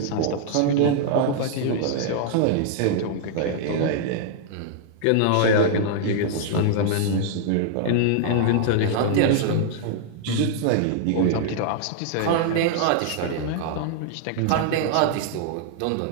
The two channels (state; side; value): different; both; correlation -0.01